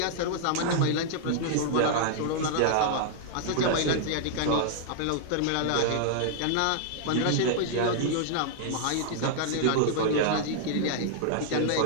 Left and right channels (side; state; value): both; different; correlation -0.01